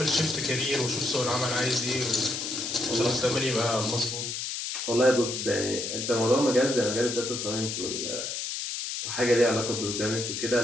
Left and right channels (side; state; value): left; noise; hiss, 4 dB below the sound